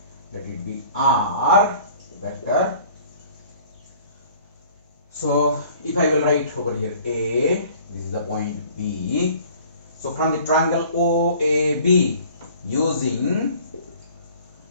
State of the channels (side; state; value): both; inverted; correlation -0.51